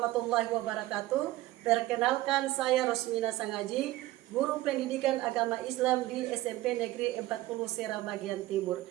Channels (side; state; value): left; quieter; 17.0 dB